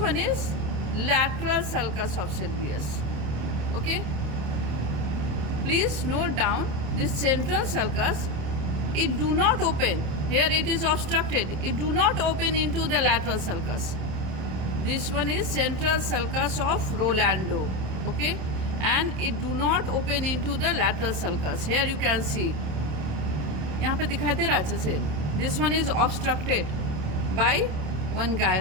is lateral sulcus of sylvius. Okay, please note down this central sulcus, it do not open. Here it is obstructed. It do not open into the lateral sulcus. This one is central sulcus of Rolando. Okay, and it do not open into the lateral sulcus. Here you can see. यहाँ पे दिखाई दे रहा है अच्छे से. This one is obstructed by one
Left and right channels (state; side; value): late; left; 27 ms